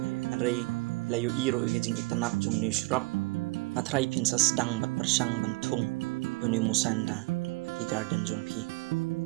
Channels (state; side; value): quieter; left; 24.1 dB